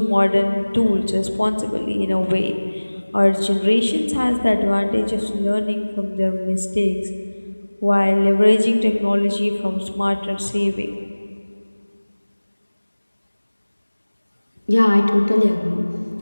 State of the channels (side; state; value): both; inverted; correlation -1.00